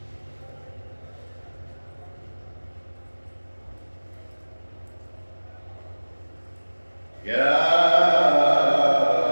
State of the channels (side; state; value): both; inverted; correlation -1.00